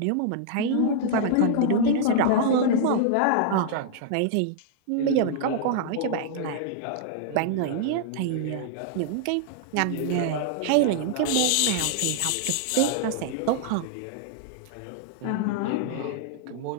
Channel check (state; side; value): different; both; correlation -0.01